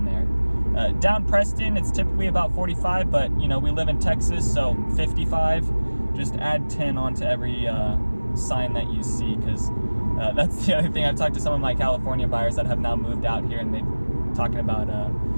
there. Down Preston, it's typically about 45, but we live in Texas, so 55. Just add 10 onto every sign that you see, because that's the other thing. I've talked to some of my California buyers that have now moved out here, and they're talking about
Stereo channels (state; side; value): inverted; both; correlation -1.00